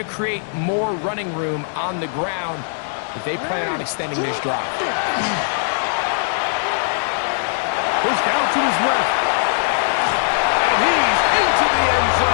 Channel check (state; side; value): silent; right; digital silence